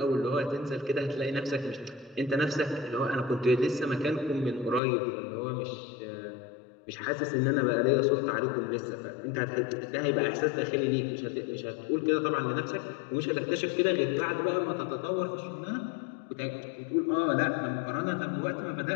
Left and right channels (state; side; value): drops out; right; at 4.8 s